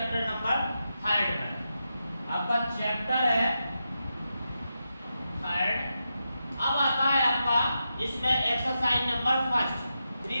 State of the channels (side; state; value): both; inverted; correlation -0.88